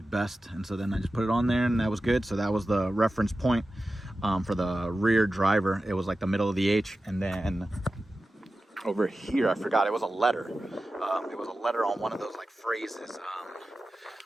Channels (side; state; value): both; normal; correlation 0.94